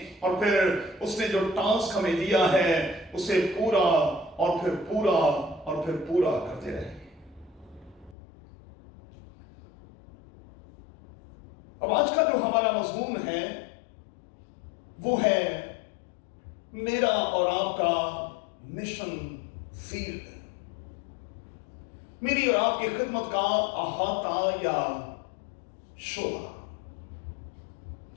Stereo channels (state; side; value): drops out; right; at 8.2 s